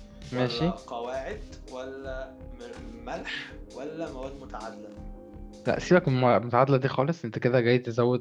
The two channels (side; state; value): both; identical; correlation 1.00